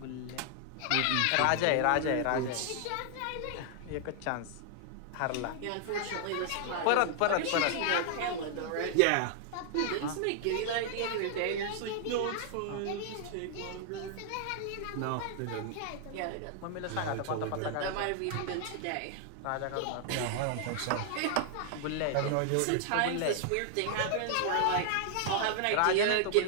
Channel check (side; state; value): both; different; correlation 0.00